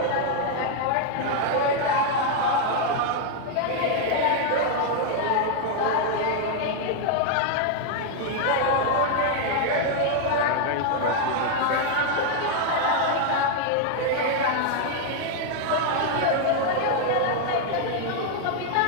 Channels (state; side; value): different; both; correlation 0.00